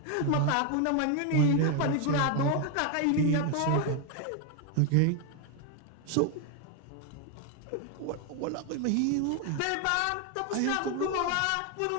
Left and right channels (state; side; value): different; both; correlation 0.01